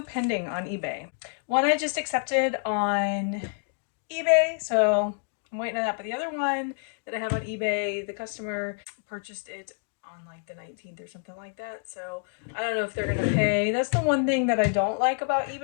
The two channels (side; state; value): right; silent; digital silence